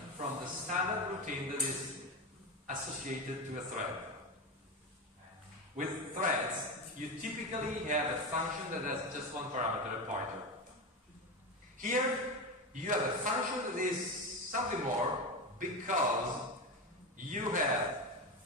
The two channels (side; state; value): both; normal; correlation 0.18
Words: from the standard routine that is associated to a thread. With threads, you typically have a function that has just one parameter, a pointer. Here, you have a function that is something more because you have